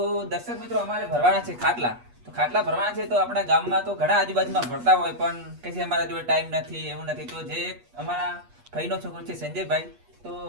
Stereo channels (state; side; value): late; left; 8.3 ms